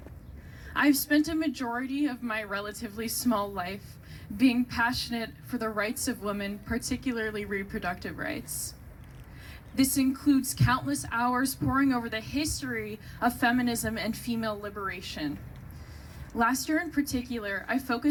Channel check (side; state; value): both; identical; correlation 1.00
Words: I've spent a majority of my relatively small life being passionate for the rights of women, particularly reproductive rights. This includes countless hours poring over the history of feminism and female liberation. Last year in particular, I